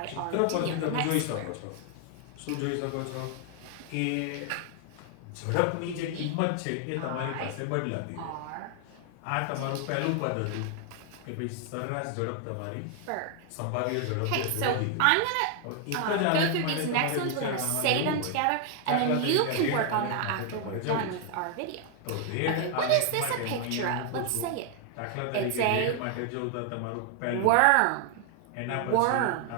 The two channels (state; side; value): different; both; correlation 0.00